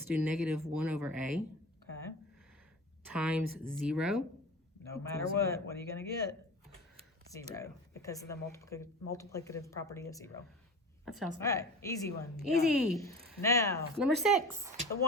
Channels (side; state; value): both; normal; correlation 0.34